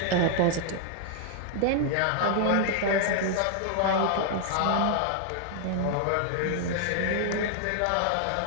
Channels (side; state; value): both; different; correlation 0.00